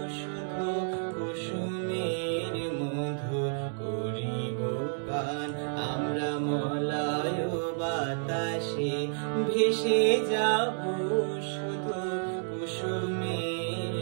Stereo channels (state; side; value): silent; left; digital silence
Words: শুধু কুসুমের মধু করিব পান। আমরা মলয় বাতাসে ভেসে যাব